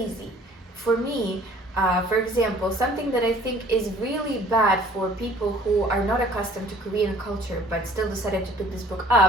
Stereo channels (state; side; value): normal; both; correlation 0.53